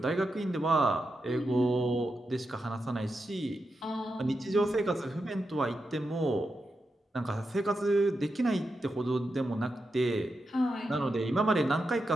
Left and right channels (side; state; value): both; normal; correlation 0.87